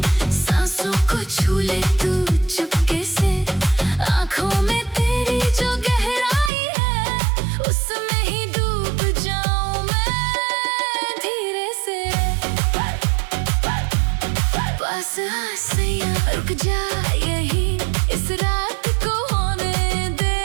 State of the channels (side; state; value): left; drops out; at 6.5 s